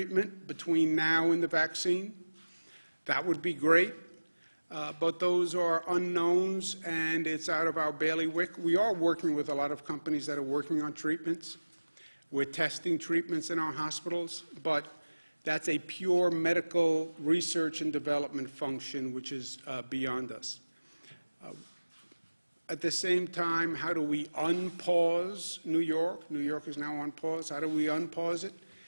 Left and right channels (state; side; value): inverted; both; correlation -1.00